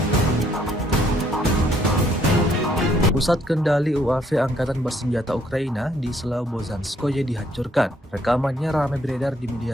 Pusat kendali UAV Angkatan Bersenjata Ukraina di Slobozhanskoye dihancurkan. Rekamannya ramai beredar di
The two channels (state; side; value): normal; both; correlation 0.68